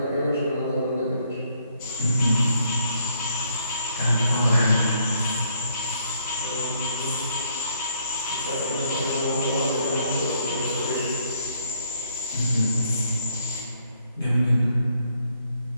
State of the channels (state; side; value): inverted; both; correlation -0.70